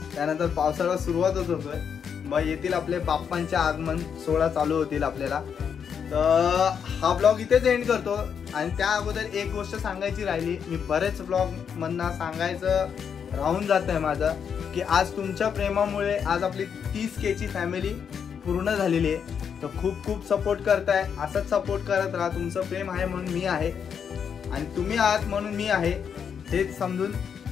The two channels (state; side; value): quieter; right; 7.3 dB